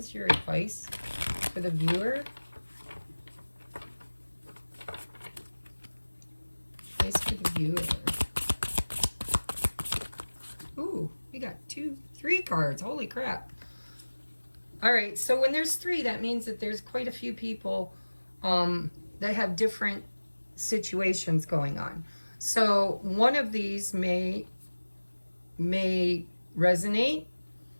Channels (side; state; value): both; inverted; correlation -1.00